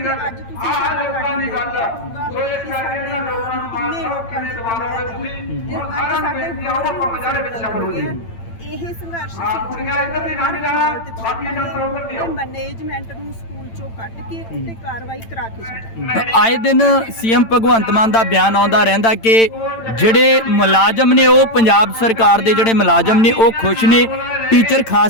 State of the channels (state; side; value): late; right; 8.9 ms